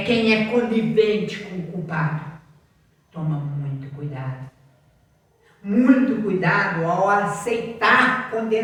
quem é conivente com o culpado. Toma muito cuidado. Muito cuidado ao aceitar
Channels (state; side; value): identical; both; correlation 1.00